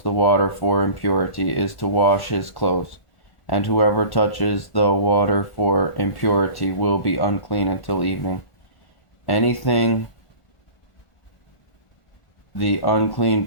the water for impurity is to wash his clothes, and whoever touches the water for impurity will be unclean until evening. Anything the unclean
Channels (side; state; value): right; late; 1.4 ms